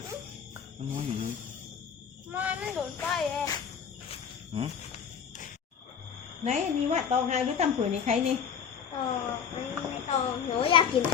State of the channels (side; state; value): right; quieter; 7.4 dB